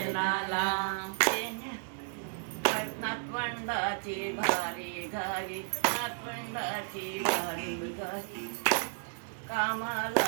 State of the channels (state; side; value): silent; left; 56 dB below the other